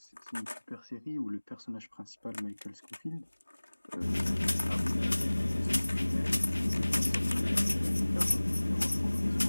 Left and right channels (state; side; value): inverted; both; correlation -1.00